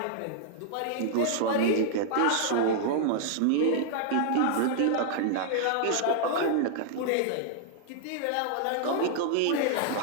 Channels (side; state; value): both; different; correlation -0.01